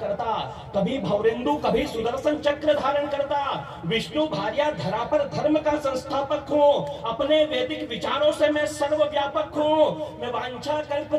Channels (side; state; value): both; identical; correlation 1.00